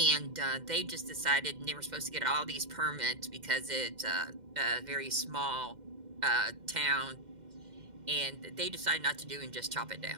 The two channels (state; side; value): late; left; 2.1 ms